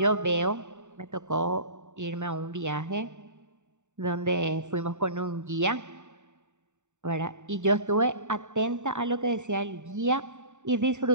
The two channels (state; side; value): late; left; 0.84 ms